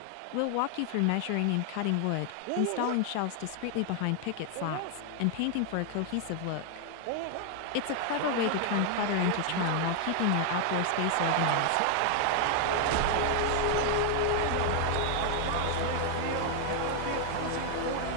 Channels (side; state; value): both; different; correlation 0.00